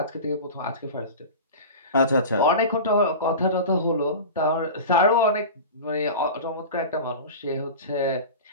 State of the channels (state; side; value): inverted; both; correlation -0.31